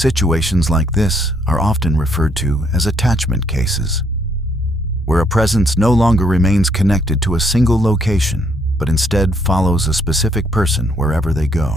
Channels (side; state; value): both; normal; correlation 0.69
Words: like this are often referred to as attachment cases, where a presence no longer remains connected to a single location, but instead follows a specific person wherever they